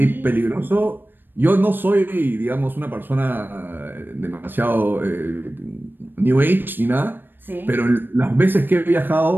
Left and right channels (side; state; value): left; late; 0.095 ms